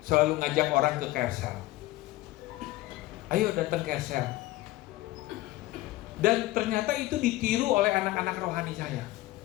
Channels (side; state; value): right; quieter; 17.7 dB